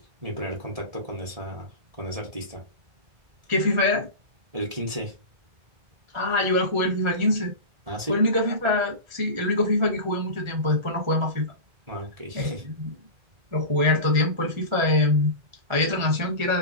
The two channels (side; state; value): left; late; 1.7 ms